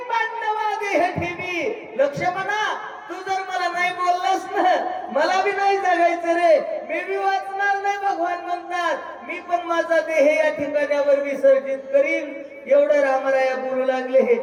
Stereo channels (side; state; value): both; identical; correlation 1.00